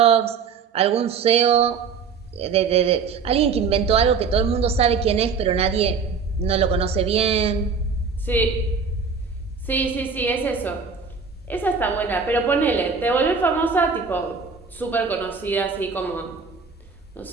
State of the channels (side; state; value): left; quieter; 5.5 dB